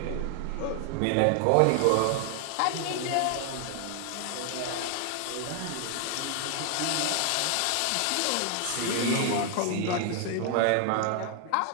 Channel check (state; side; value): different; both; correlation 0.00